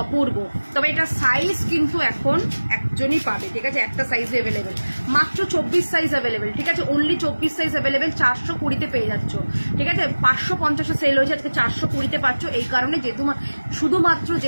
অপূর্ব। তবে এটা সাইজ কিন্তু এখন একজনই পাবে, ঠিক আছে, একটা সাইজ অ্যাভেলেবেল, মাত্র 24 সাইজ অ্যাভেলেবেল, ঠিক আছে, অনলি 24 সাইজ অ্যাভেলেবেল, 420-তে পেয়ে যাচ্ছ, ঠিক আছে, 550-এ সেল হয়েছে, আজকে 420-তে পাচ্ছ। এই কারণে যেহেতু শুধুমাত্র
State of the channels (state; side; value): inverted; both; correlation -1.00